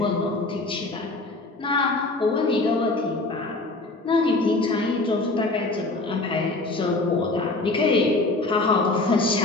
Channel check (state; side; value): quieter; right; 3.1 dB